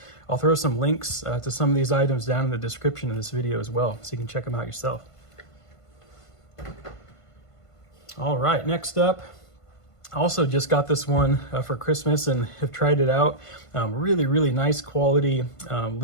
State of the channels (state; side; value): late; right; 1.5 ms